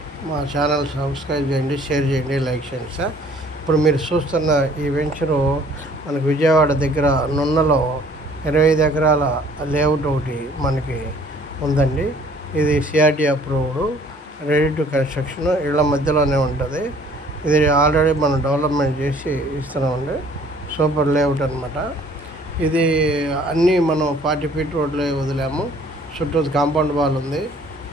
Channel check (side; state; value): both; normal; correlation 0.56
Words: మా ఛానల్ సబ్స్క్రైబ్ చేయండి, షేర్ చేయండి, లైక్ చేయండి సార్. ఇప్పుడు మీరు చూస్తున్న ఈ వెంచరు మనకు విజయవాడ దగ్గర నున్నలో 25 ఎకరాల లేఅవుట్ ఒకటి మనకి ఉందండి. ఇది CRT approved, ready to construction, ఇళ్ళ మధ్యలోనే ఉంటుంది. ఇది ఆల్రెడీ మనం డెవలప్మెంట్ చేసి ఇస్తున్నామండి. సూపర్ లేఅవుట్ అనమాట. ఇది అన్నీ మనం 40 ఫీట్ రోడ్లో వదిలాము. చుట్టూ కాంపౌండ్ వాల్ ఉంది,